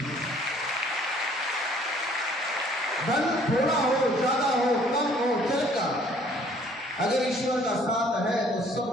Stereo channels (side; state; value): both; normal; correlation 0.58